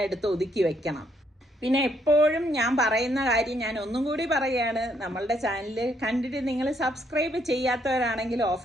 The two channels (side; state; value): both; normal; correlation 0.72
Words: എടുത്ത് ഒതുക്കി വെക്കണം. പിന്നെ എപ്പോഴും ഞാൻ പറയുന്ന കാര്യം ഞാൻ ഒന്നും കൂടി പറയുകയാണ്, നമ്മളുടെ ചാനൽ കണ്ടിട്ട് നിങ്ങൾ സബ്സ്ക്രൈബ് ചെയ്യാത്തവരാണെങ്കിൽ ഓഫ്